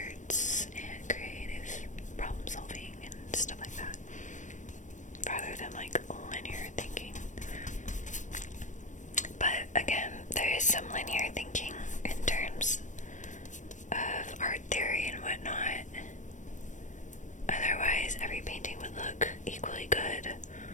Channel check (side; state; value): right; late; 0.36 ms